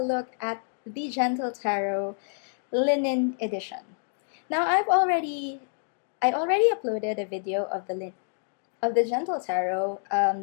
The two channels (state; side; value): silent; right; 60 dB below the other